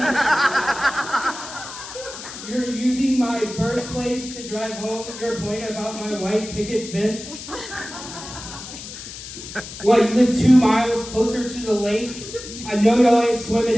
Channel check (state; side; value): noise; left; hiss, 12 dB below the sound